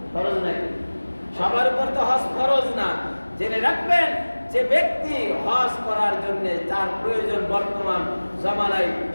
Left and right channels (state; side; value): inverted; both; correlation -1.00